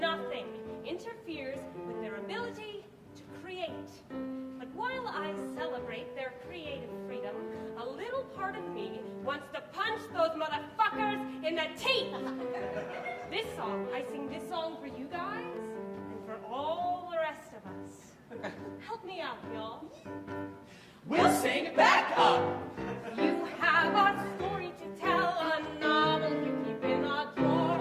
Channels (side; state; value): both; identical; correlation 1.00